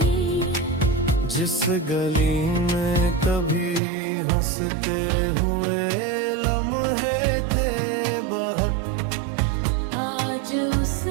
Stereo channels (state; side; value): drops out; left; at 3.8 s